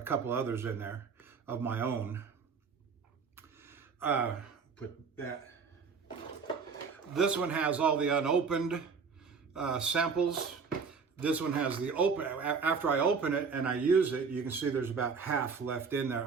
couple others in there of my own. Put that. This one has all the unopened samples. This one has the open. After I open it and I use it, you can see there's about half left in there.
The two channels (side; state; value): left; quieter; 5.4 dB